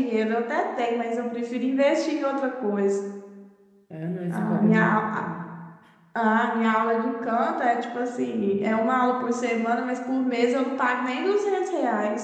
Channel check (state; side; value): identical; both; correlation 1.00